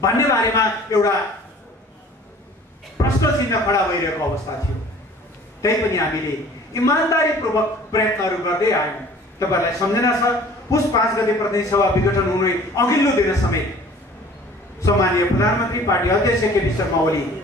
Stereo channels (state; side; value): normal; both; correlation 0.49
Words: भन्ने बारेमा एउटा प्रश्न चिन्ह खडा भइरहेको अवस्था थियो। त्यही पनि हामीले इमानदारीपूर्वक प्रयत्नहरू गर्दै आयौँ। तपाईहरुलाई सम्झना छ, पुस 5 गते प्रतिनिधि सभा विघटन हुने अघिल्लो दिन समेत सम्माननीय प्रधानमन्त्री पार्टी अध्यक्ष केपी शर्मा ओली